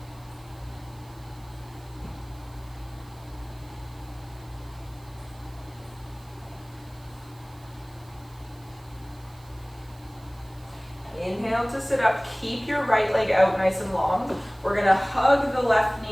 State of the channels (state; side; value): noise; right; hiss, 26 dB below the sound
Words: Inhale to sit up, keep your right leg out nice and long. We're gonna hug the left